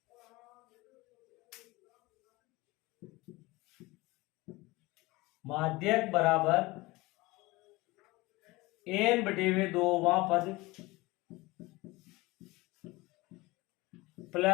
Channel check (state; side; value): quieter; right; 21.7 dB